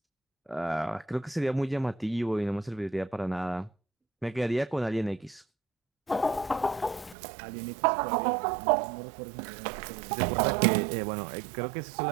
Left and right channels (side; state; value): left; drops out; at 7.2 s